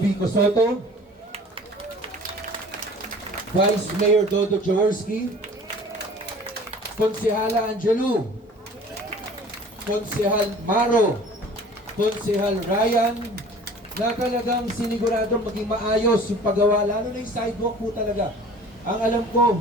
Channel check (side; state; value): both; normal; correlation 0.46